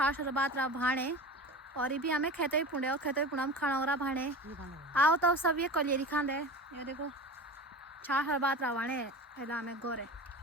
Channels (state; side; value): normal; both; correlation 0.32